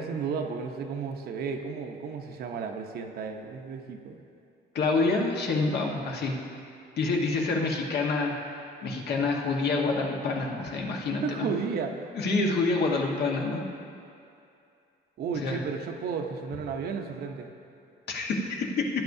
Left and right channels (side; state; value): both; normal; correlation 0.49